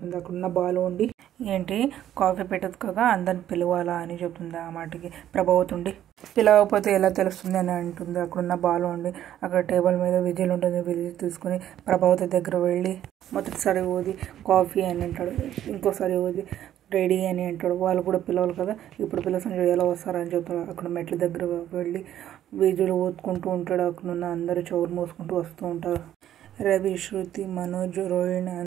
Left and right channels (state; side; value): quieter; left; 11.5 dB